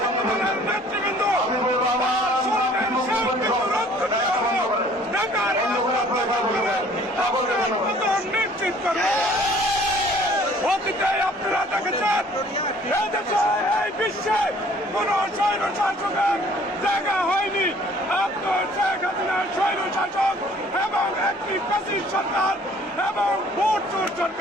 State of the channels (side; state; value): both; normal; correlation 0.55